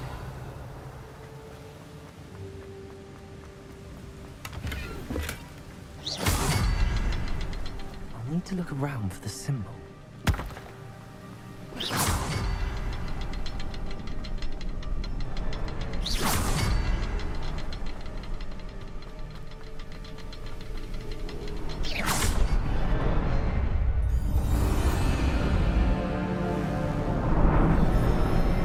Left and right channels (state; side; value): identical; both; correlation 1.00